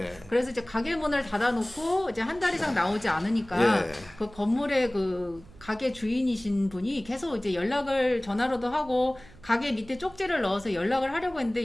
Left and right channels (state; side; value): noise; right; hum, 22 dB below the sound